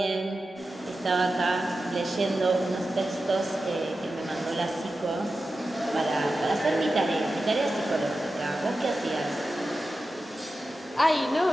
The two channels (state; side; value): normal; both; correlation 0.92